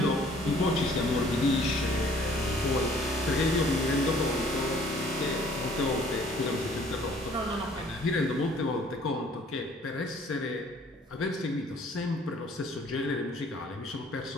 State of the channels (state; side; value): normal; both; correlation 0.57